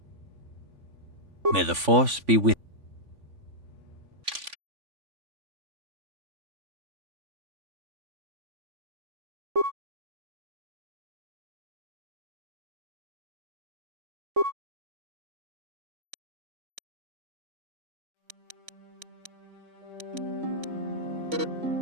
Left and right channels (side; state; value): left; late; 3.5 ms